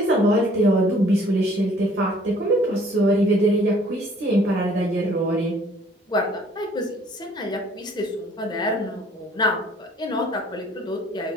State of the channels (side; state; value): both; normal; correlation 0.57